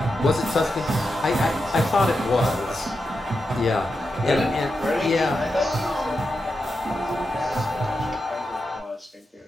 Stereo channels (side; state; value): both; normal; correlation 0.88